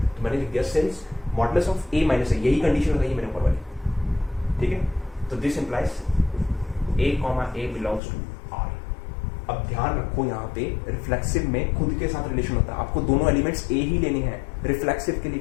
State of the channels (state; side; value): drops out; right; at 8.0 s